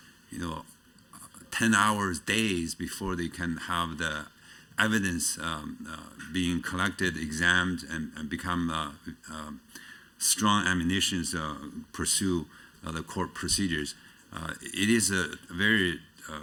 10 hours, days before they can have the evidence being collected, examined, and become strong ammunition to pursue the court procedures. It is a very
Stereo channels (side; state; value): both; identical; correlation 1.00